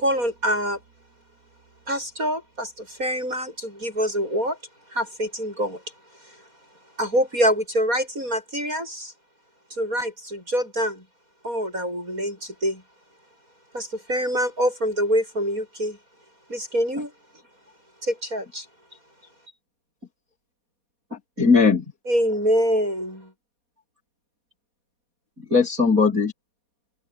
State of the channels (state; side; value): late; left; 4.2 ms